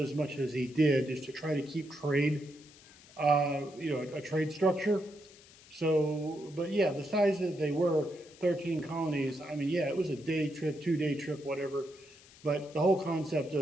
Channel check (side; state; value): left; noise; hiss, 23 dB below the sound